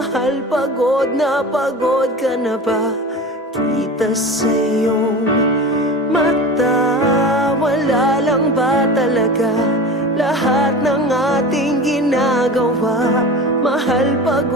pagod ka na ba? Kita sa iyong mata, wala lang ba talaga lahat ng ating ginagawa? Mahal,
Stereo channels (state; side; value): normal; both; correlation 0.33